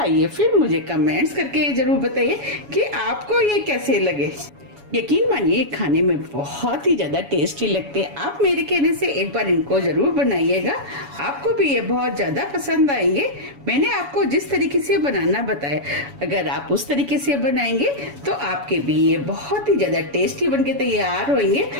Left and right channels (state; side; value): late; left; 7.1 ms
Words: फिर मुझे कमेंट्स करके जरूर बताइए कि आपको ये कैसे लगे। यकीन मानिए खाने में बहुत ही ज्यादा टेस्टी लगते हैं। आप मेरे कहने से एक बार इनको जरूर बनाइएगा, आपको भी ये बहुत ज्यादा पसंद आएंगे। मैंने आपको जिस तरीके से बनाना बताया, अगर आप उस तरीके से बनाएंगे तो आपके भी ये बहुत ही ज्यादा टेस्टी बनके तैयार होंगे